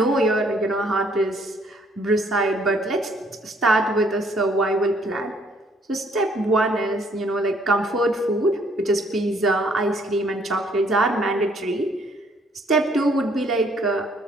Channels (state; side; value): normal; both; correlation 0.65